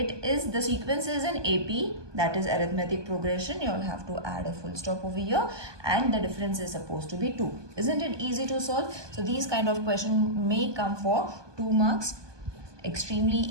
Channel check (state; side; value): late; left; 1.2 ms